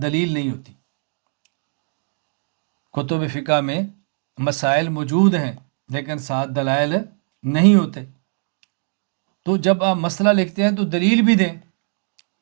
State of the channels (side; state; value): left; silent; 64 dB below the other